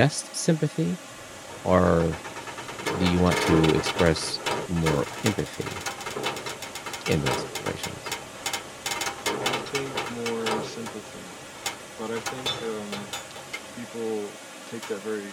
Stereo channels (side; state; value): both; identical; correlation 1.00